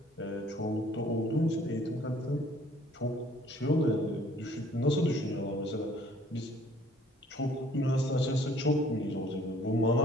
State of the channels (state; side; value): normal; both; correlation 0.58